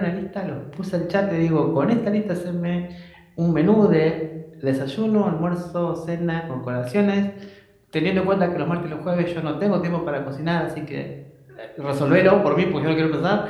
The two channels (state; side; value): identical; both; correlation 1.00